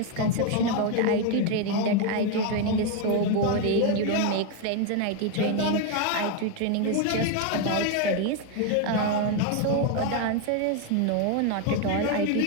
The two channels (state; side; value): different; both; correlation 0.01